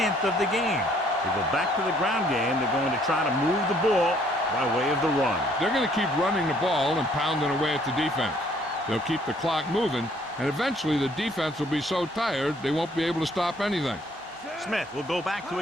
of the game. They go back to the ground game. They're going to try to move the ball by way of the run. They're going to keep running the ball and pounding away at the defense. They'll keep the clock moving, and eventually the defense will be so tired they won't be able to stop anything. Smith will go back to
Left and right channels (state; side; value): normal; both; correlation 0.63